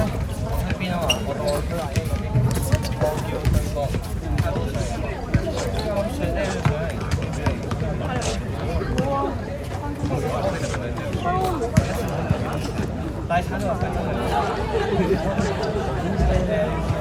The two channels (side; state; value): both; identical; correlation 1.00